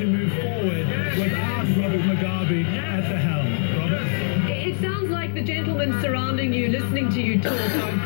move forward without Robert Mugabe at the helm. Robert? It sounds like the gentlemen surrounding you, listening to you talk, are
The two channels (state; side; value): silent; right; digital silence